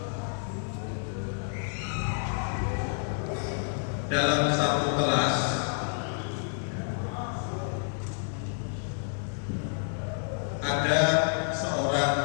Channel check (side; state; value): right; silent; 58 dB below the other